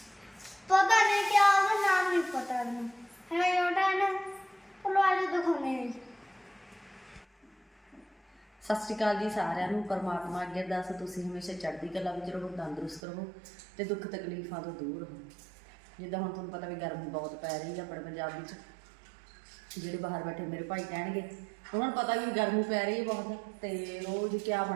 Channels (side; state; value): left; drops out; at 13.0 s